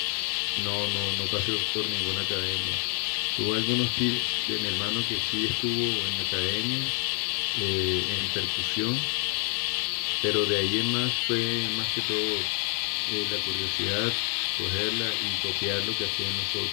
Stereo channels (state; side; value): quieter; right; 39.8 dB